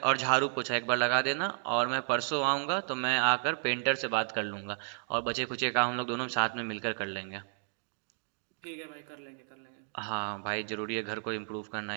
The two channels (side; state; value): left; silent; 56 dB below the other